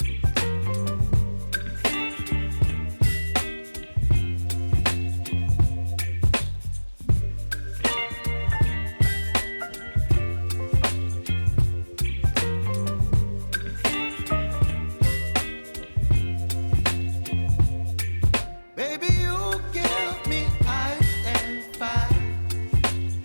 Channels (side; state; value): both; inverted; correlation -1.00